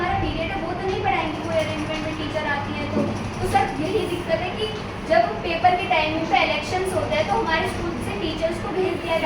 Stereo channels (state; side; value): identical; both; correlation 1.00